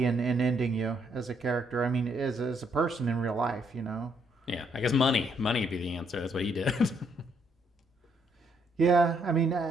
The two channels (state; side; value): normal; both; correlation 0.72